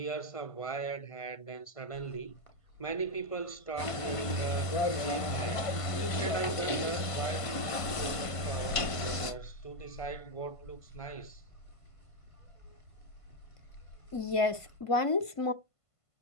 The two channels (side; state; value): right; late; 1.5 ms